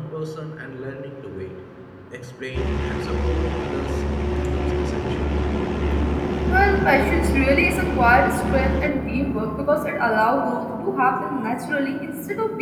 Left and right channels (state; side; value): identical; both; correlation 1.00